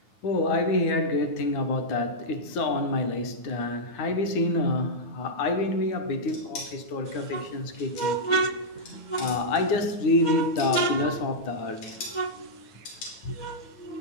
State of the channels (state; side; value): late; right; 9.4 ms